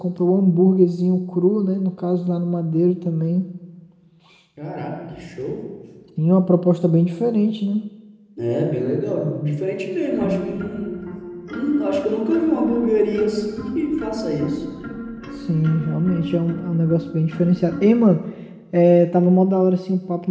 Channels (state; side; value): identical; both; correlation 1.00